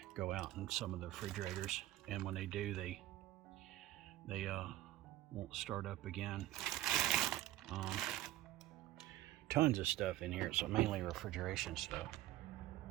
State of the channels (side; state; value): left; quieter; 15.1 dB